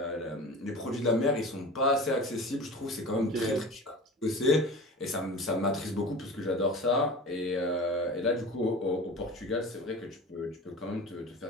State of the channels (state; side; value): normal; both; correlation 0.36